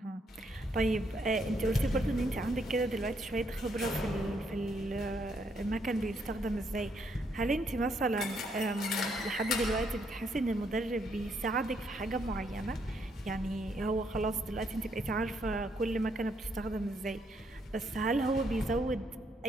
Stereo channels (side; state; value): both; normal; correlation 0.74